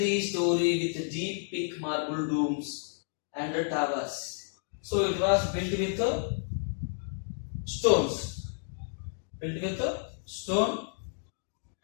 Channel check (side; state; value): right; silent; digital silence